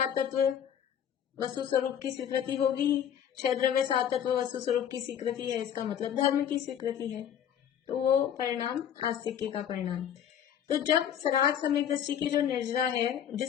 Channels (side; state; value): right; quieter; 9.4 dB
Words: तत्व वस्तु स्वरूप की स्वीकृति होगी। 6 द्रव्य 7 तत्व वस्तु स्वरूप की स्वीकृति है, इसका मतलब धर्म की स्वीकृति है, तो वो परिणाम आस्तिक्य का परिणाम। तो जब सराग सम्यक दृष्टि की जो निर्जरा है,